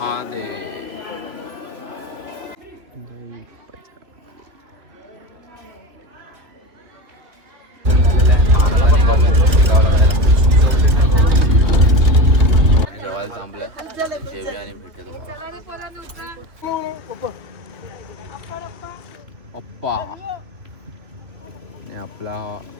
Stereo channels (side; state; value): left; late; 2.8 ms